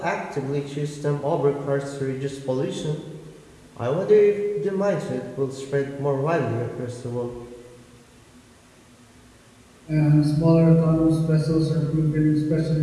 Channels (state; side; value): identical; both; correlation 1.00